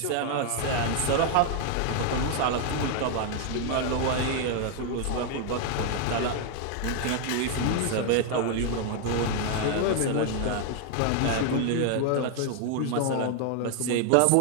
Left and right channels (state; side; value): different; both; correlation 0.00